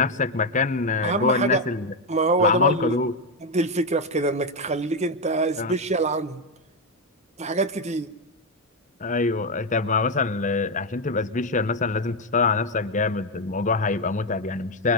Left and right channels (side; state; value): both; normal; correlation 0.06